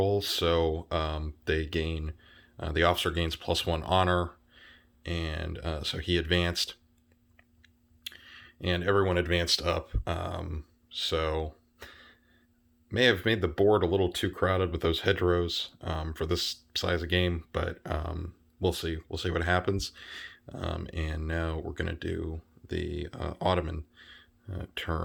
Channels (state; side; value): identical; both; correlation 1.00